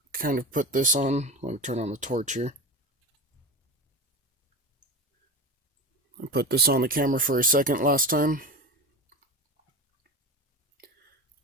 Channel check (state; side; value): normal; both; correlation 0.26